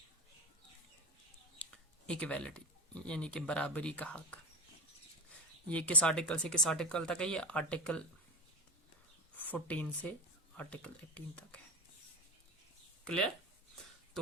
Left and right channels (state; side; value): normal; both; correlation 0.23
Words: इक्वालिटी, यानी कि बराबरी का हक। ये किस आर्टिकल से किस आर्टिकल तक है? ये आर्टिकल 14 से आर्टिकल 18 तक है। क्लियर?